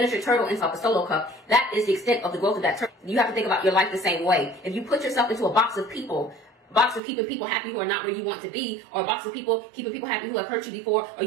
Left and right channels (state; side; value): drops out; left; at 7.0 s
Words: turtle inside a solo cup, that is the extent of the growth of that turtle. You have to think about your life the same way. If you put yourself into a box of people, box of keeping people happy who are not where you want to be, or a box of people keeping people happy who have hurt you before, or